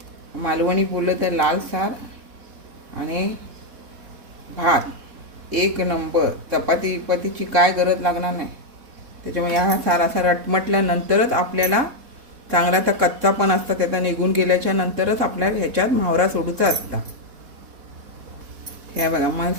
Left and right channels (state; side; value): late; left; 4.1 ms